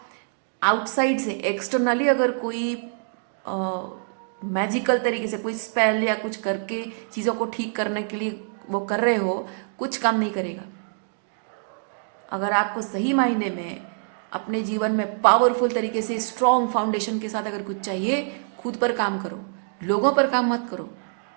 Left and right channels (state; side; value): silent; left; digital silence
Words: आउटसाइड से एक्सटर्नली अगर कोई मैजिकल तरीके से कोई स्पेल या कुछ करके चीज़ों को ठीक करने के लिए वो कर रहे हो, कुछ काम नहीं करेगा। अगर आपको सही मायने में अपने जीवन में पावरफुल तरीके से स्ट्रॉन्ग फाउंडेशन के साथ अगर कुछ चाहिए, खुद पर काम करो, लोगों पर काम मत करो,